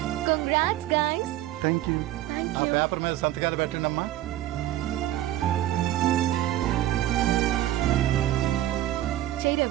Congrats guys. Thank you. ఆ పేపర్ మీద సంతకాలు పెట్టండి అమ్మా. చెయ్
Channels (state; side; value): quieter; left; 13.9 dB